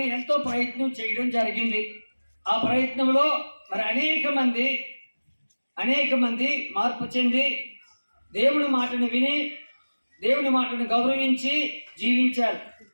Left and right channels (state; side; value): inverted; both; correlation -1.00